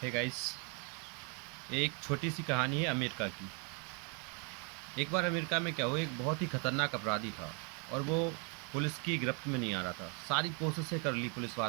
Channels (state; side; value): quieter; left; 36.3 dB